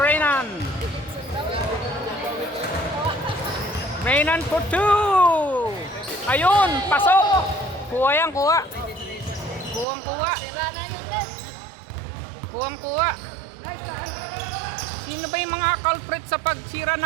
Renan for 2. Ayun, pasok. Kuha. Sino ba yung mga culprit sa pagsira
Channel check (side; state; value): left; drops out; at 9.9 s